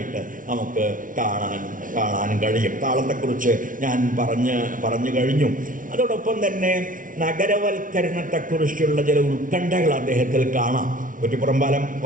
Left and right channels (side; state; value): left; late; 0.38 ms